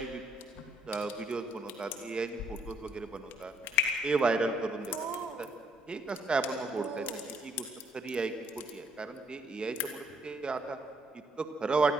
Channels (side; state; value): both; normal; correlation 0.68